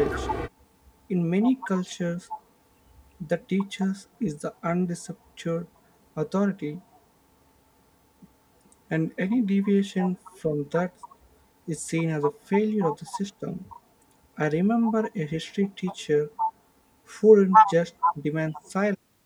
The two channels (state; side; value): identical; both; correlation 1.00